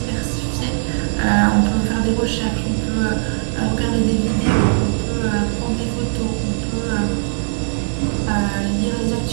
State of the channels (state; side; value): silent; left; digital silence